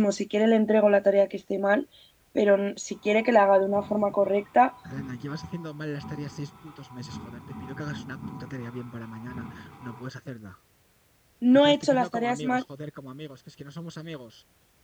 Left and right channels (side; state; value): both; identical; correlation 1.00